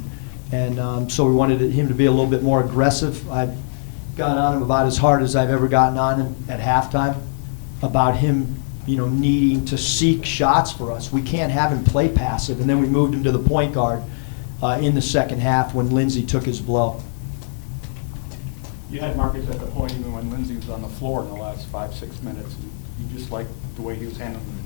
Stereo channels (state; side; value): silent; right; digital silence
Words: and so we wanted him to be a little bit more aggressive. I got on him about as hard as I've ever gotten on him at halftime, about him, you know, needing to seek shots for us. We can't have him play passive. And then we moved him to the point guard in the second half when Lindsey took his blow. You had Marcus at the point even when Lindsey was on the floor in the last 5-6 minutes. And you just liked the way he was handling